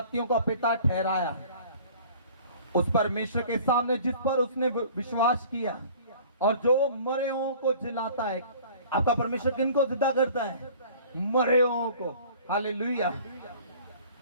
का पिता ठहराया, उस परमेश्वर के सामने जिस पर उसने विश्वास किया, और जो मरे हुओं को जिलाता है। आपका परमेश्वर किनको जिंदा करता है? मरे हुओं को। हालेलुया।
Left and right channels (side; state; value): both; inverted; correlation -0.48